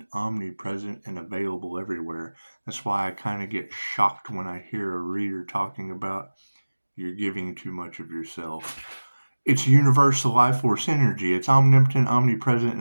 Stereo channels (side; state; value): both; inverted; correlation -1.00